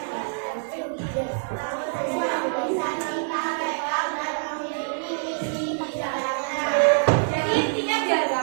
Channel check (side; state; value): left; silent; digital silence